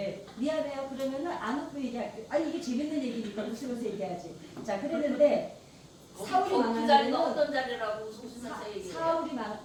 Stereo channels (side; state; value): both; identical; correlation 1.00